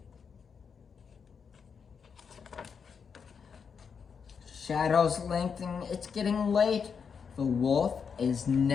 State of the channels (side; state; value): right; quieter; 6.3 dB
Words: Shadows lengthening, it's getting late. The wolf is